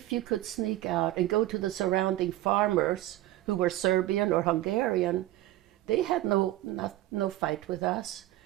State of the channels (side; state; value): left; quieter; 15.4 dB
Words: you could sneak out and go to the surrounding farmers who were Serbian or Hungarian, they had no fight with us.